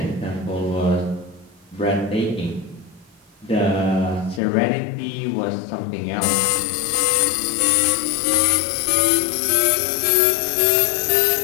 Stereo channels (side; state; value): right; drops out; at 4.4 s